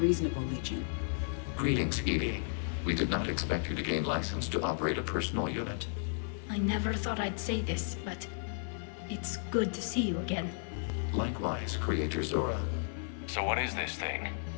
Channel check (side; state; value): right; silent; 55 dB below the other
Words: Legion. Greetings, Edie. We did not expect you to gain license to operate a personal unit. I never thought I'd say this, but it's good to see you again. Likewise, Creator Zora. So what is this thing?